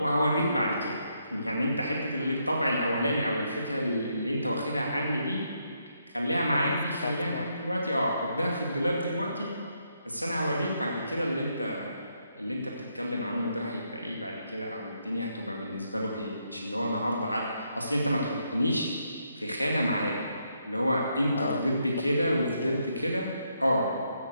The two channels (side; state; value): both; inverted; correlation -0.77